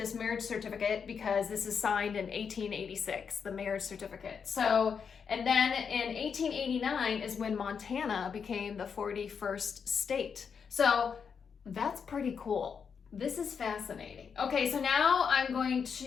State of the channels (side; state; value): right; quieter; 6.4 dB